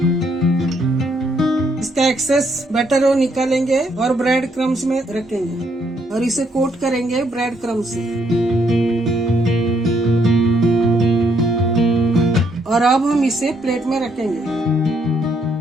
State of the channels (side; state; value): both; normal; correlation 0.72